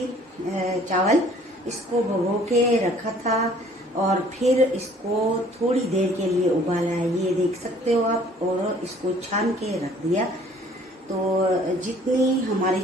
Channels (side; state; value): both; normal; correlation 0.55